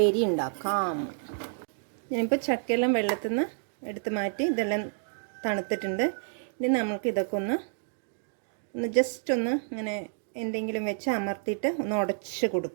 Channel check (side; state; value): left; silent; digital silence